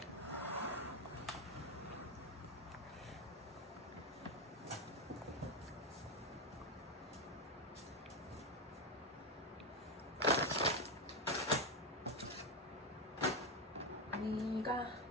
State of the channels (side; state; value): both; normal; correlation 0.10